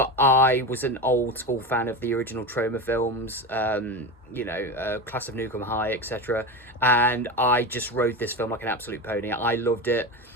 I was an old school fan of the original trauma films, Class of Nukem High, etc. And I just rode this film like an absolute pony. I loved it.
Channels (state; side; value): normal; both; correlation 0.22